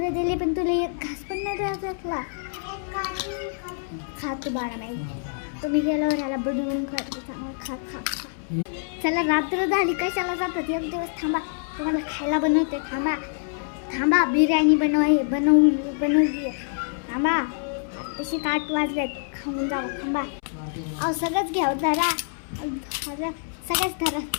दिले पण तुला एक घास पण नाही द्यायला. खा तू बाळा नाही. तुम्ही गेल्यावर ह्याला बनवून खा. चला रात्र झाली कशाला जातात. एक दिवस थांबा तुम्हाला खायला बनवते. थांबा बिर्याणी बनवली. थांबा तशी 8 वाजलेत. खाऊन जावं. थांबा अहो सगळंच घ्या. धरा सगळंच धरा.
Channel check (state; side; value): silent; right; 61 dB below the other